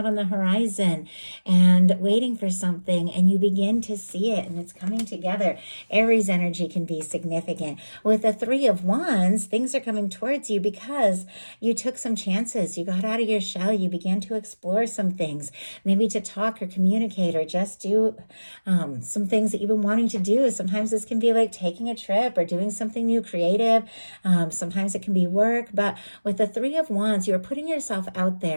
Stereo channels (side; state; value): both; inverted; correlation -1.00